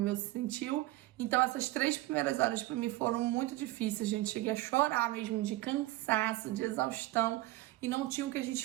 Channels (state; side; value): quieter; left; 17.8 dB